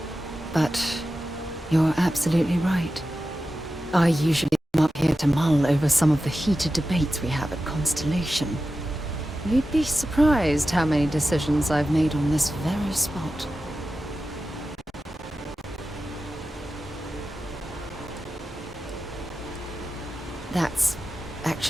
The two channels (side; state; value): both; normal; correlation 0.93